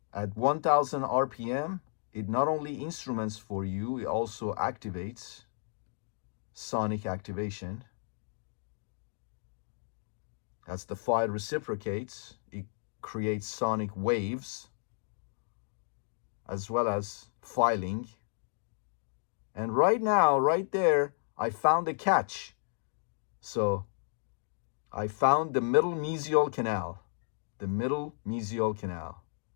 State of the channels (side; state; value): right; silent; digital silence